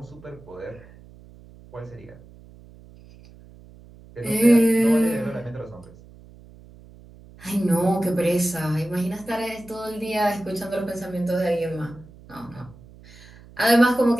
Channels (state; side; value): noise; right; hum, 22 dB below the sound